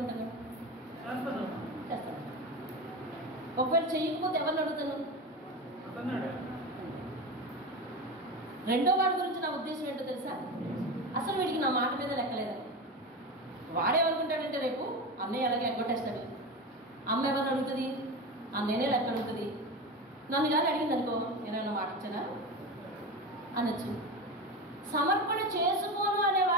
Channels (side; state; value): both; normal; correlation 0.23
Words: చేస్తాను. ఒకవేళ చెయ్యకపోతే ఎవరిని అడుగుతాను? రెండో వాడి గురించి నా ఉద్దేశం ఏంటో తెలుసా? అసలు వీడికి నా మాట మీద లెక్కలేదు. వాడేమనుకుంటాడంటే రేపు అన్నయ్య అలాగే ఎగ్గొట్టేస్తాడు, అమ్మ ఎవరిని అడుగుతుంది, అన్నయ్యనే లెక్క అడుగుతుంది. నన్ను కానీ అడిగింది అనుకో, నేనైనా మాట ఇచ్చానా అనొచ్చు. సమర్పణ చేసుకోను అనే